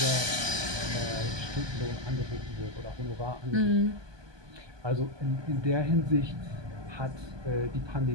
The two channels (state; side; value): late; left; 1.2 ms